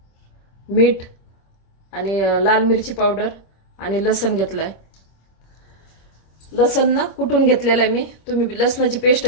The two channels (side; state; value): right; late; 25 ms